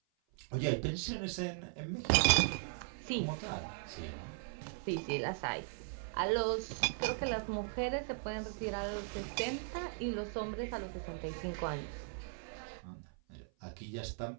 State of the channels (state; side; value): silent; left; 52 dB below the other